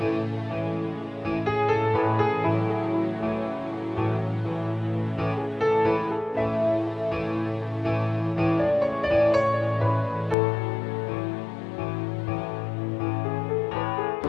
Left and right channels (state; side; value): drops out; right; at 10.4 s